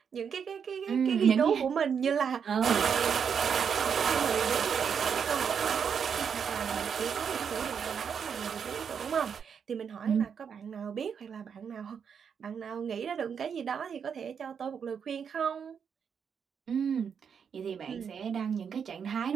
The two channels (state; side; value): quieter; left; 7.0 dB